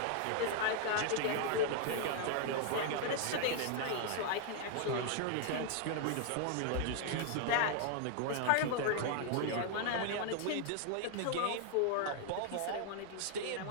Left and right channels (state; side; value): different; both; correlation 0.00